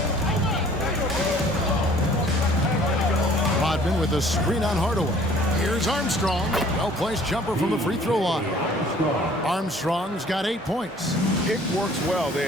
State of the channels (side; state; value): both; normal; correlation 0.54